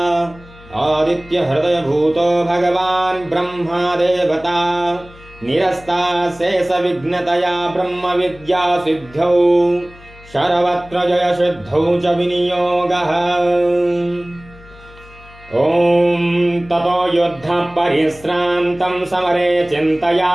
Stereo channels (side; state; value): left; noise; hum, 22 dB below the sound